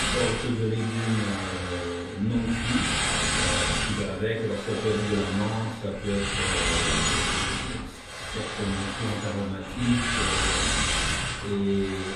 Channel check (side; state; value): both; identical; correlation 1.00